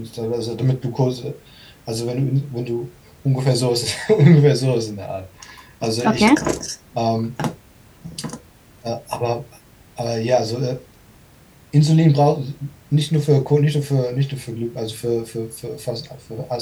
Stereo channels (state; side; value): identical; both; correlation 1.00